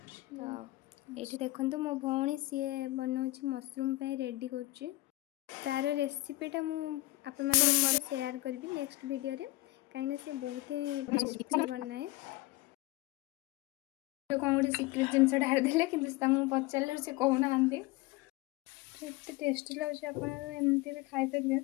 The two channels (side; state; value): right; quieter; 19.4 dB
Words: तो ये देखो मो भौणी सी बनाऊँ मशरूम रेडी कर तार रेसिपीटा मुझे शेयर करी नेक्स्ट वीडियो रे कहीं से बहुत ही टेस्टी बनाए तो कौन गोटे सिक्रेट जिनस ढारदे कि पचारे से कहना एत टेस्टी लगे आपमती भी खाईपर